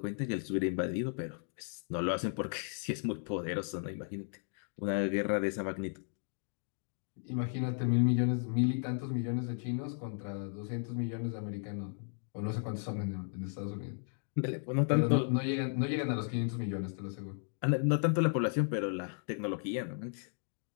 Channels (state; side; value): silent; right; 54 dB below the other